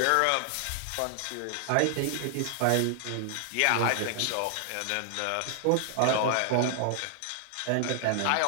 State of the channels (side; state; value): both; different; correlation 0.00